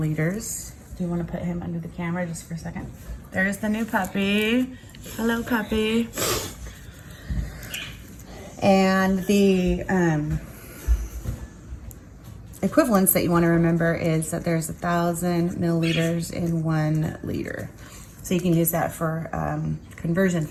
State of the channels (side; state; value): both; identical; correlation 1.00